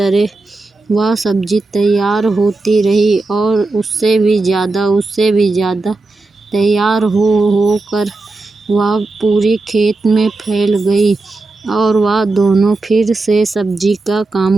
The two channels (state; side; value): quieter; left; 3.4 dB